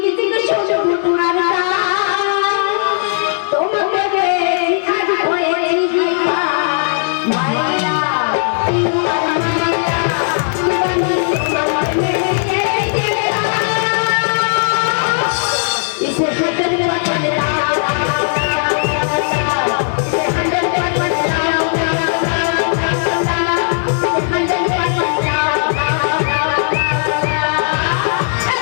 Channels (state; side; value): silent; right; 69 dB below the other